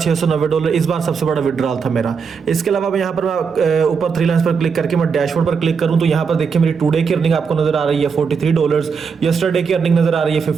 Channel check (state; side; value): quieter; left; 5.8 dB